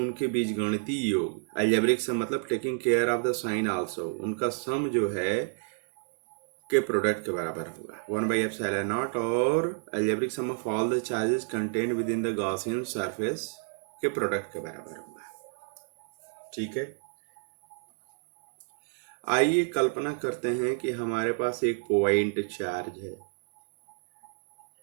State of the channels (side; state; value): left; silent; 56 dB below the other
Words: बीच गणितीय योग, अलजेब्रिक सम मतलब taking care of the sign also, उनका सम जो है के प्रोडक्ट के बराबर होगा 1/एप्सिलॉन नॉट, और algebraic sum of all the charges contained within the Gaussian surface के प्रोडक्ट के बराबर होगा। ठीक है, आइए कल्पना करते हैं कि हमारे पास एक पॉइंट चार्ज है,